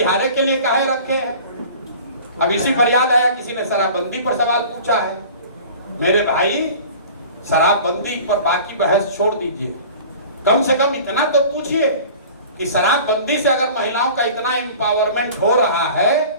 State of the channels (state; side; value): inverted; both; correlation -0.42